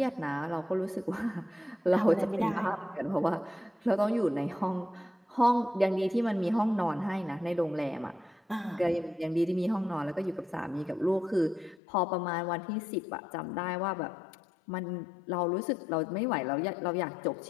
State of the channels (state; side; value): drops out; right; at 11.8 s